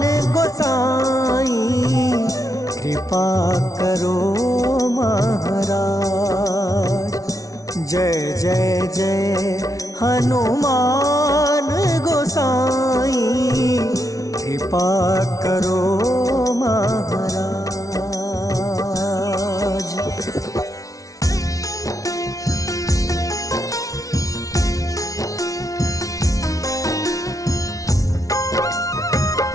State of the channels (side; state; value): right; late; 0.17 ms